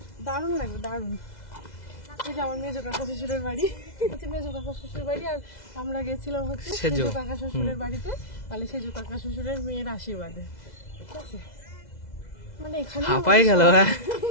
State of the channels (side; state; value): right; late; 2.0 ms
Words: দারুণ লাগবে, দারুণ। এই যে আমার মেজো কাকা শ্বশুরের বাড়ি, হচ্ছে মেজো কাকা শ্বশুরের বাড়ি, আর আমরা গেছিলাম হচ্ছে সেজো। সেজো কাকা শ্বশুরের বাড়িতে, মানে সেজো কাকা শ্বশুরের মেয়ের আশীর্বাদে। ঠিক আছে, মানে এখানে হাঁপাই গেল। হ্যাঁ